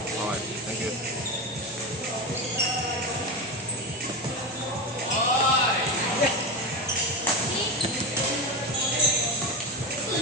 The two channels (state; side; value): normal; both; correlation 0.19